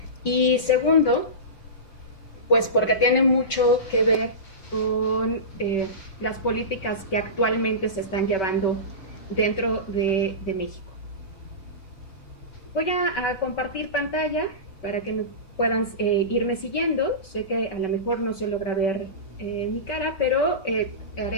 y segundo, pues porque tiene mucho que ver con las políticas que actualmente se están llevando dentro de México. Voy a compartir pantalla para que puedan irme siguiendo. Sé que a lo mejor no se logra ver mi cara, pero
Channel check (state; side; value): late; right; 5.2 ms